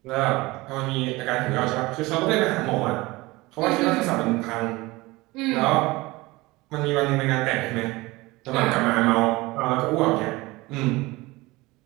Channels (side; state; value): left; quieter; 21.4 dB